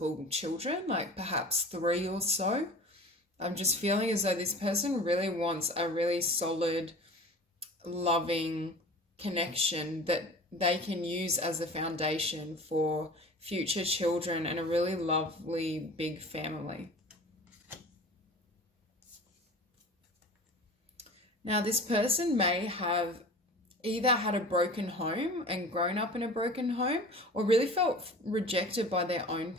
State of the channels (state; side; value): normal; both; correlation 0.39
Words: children, like perhaps 3 or so. I'm just feeling as though this person really wants a really solid, loving connection that they can use as a foundation for future children and a really lovely big family. Now, this person may have either had a broken home and grown up in a broken home or really felt rejected by their own